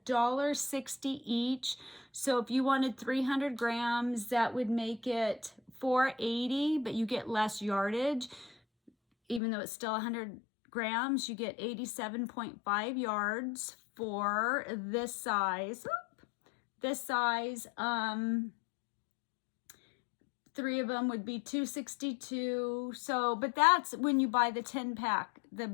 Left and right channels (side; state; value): right; drops out; at 9.4 s